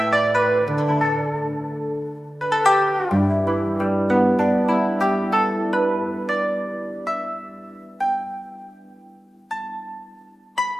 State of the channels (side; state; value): both; normal; correlation 0.95